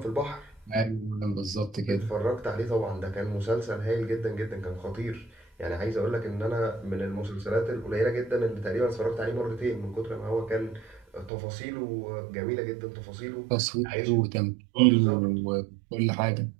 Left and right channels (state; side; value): drops out; left; at 11.3 s